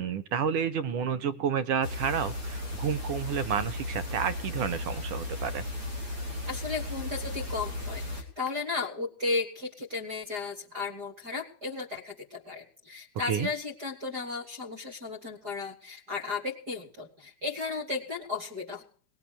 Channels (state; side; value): late; left; 4.9 ms